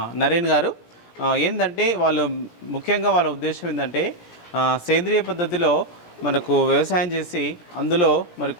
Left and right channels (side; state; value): right; late; 17 ms